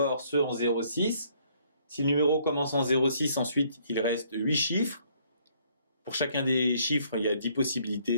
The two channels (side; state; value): both; inverted; correlation -0.65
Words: ceux en 06. Si le numéro commence en 06, ensuite il reste 8 chiffres. Pour chacun des chiffres, il y a 10